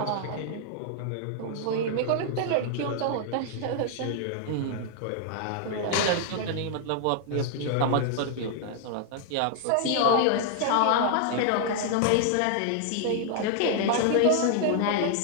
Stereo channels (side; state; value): both; different; correlation 0.00